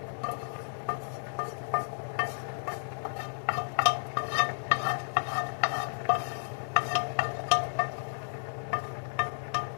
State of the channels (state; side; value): silent; right; digital silence